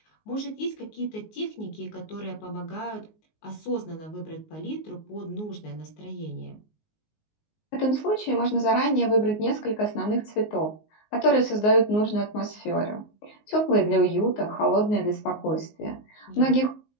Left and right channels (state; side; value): late; right; 19 ms